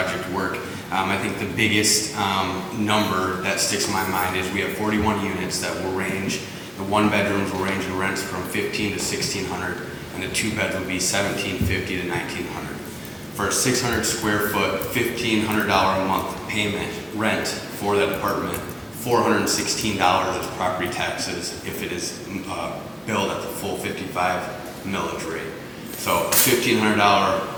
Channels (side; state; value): both; identical; correlation 1.00